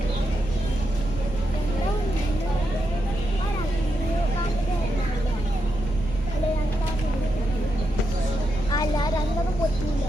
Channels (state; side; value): noise; right; rumble, 9 dB below the sound